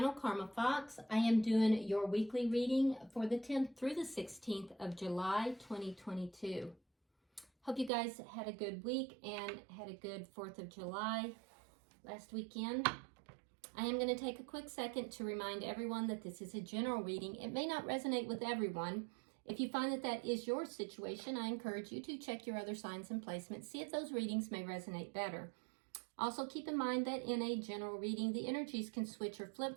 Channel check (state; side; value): drops out; left; at 7.9 s